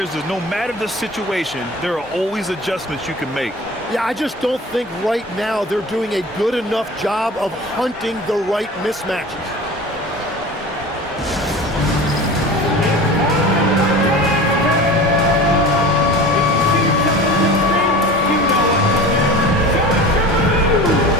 is no matter the situation, there are always adjustments you can make. Yeah, I just don't think right now they're doing a good enough job of hunting the right mismatches.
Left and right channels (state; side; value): normal; both; correlation 0.36